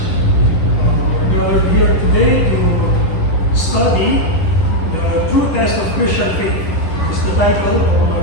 We're gathered here today to study the true test of Christian faith. Is the title of my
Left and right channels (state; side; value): late; right; 10 ms